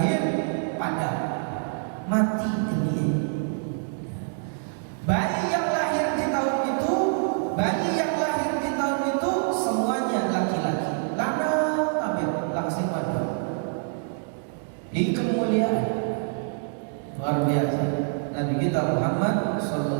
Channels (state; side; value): silent; left; digital silence